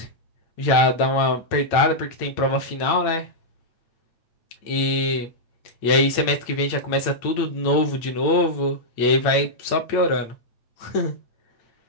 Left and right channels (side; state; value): right; late; 8.8 ms